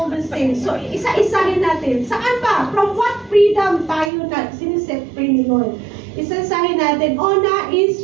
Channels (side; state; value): left; drops out; at 4.1 s